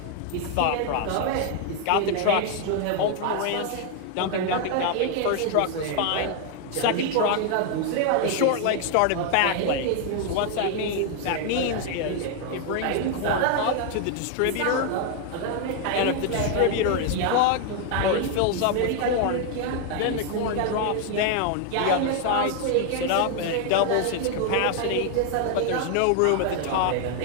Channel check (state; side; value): different; both; correlation 0.00